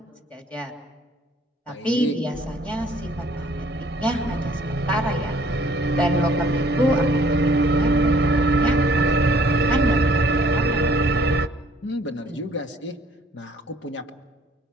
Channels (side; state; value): both; normal; correlation 0.59